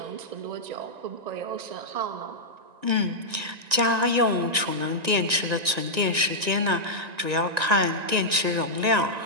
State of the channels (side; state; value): left; late; 1.9 ms